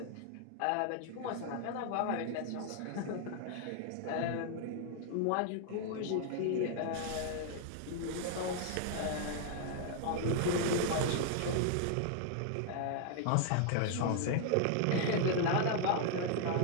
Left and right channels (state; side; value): different; both; correlation 0.00